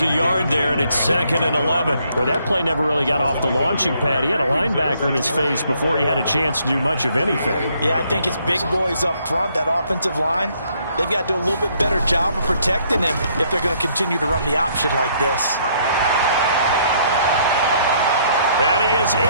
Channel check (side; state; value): both; inverted; correlation -0.68